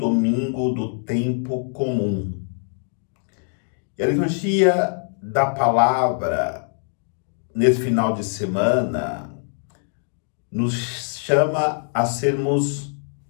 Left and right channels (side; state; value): right; silent; 57 dB below the other